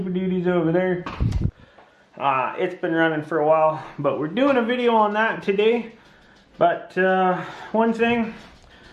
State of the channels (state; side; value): identical; both; correlation 1.00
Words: Duty's over there. It's been running for a while, but we're doing a video on that today. But one thing,